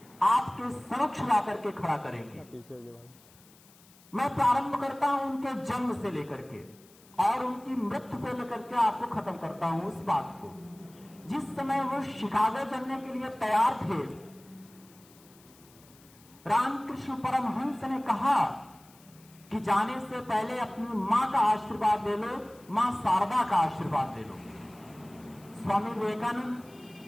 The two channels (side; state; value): left; noise; hiss, 26 dB below the sound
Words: आपके समक्ष ला करके खड़ा करेंगे। मैं प्रारंभ करता हूं उनके जन्म से लेकर के और उनकी मृत्यु को लेकर के आपको खत्म करता हूं उस बात को। जिस समय वो शिकागो चलने के लिए तैयार थे, रामकृष्ण परमहंस ने कहा कि जाने से पहले अपनी मां का आशीर्वाद ले लो, मां शारदा का आशीर्वाद ले लो। स्वामी विवेकानंद